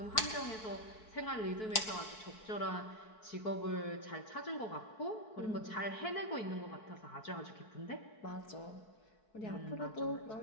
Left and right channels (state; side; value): late; right; 4.6 ms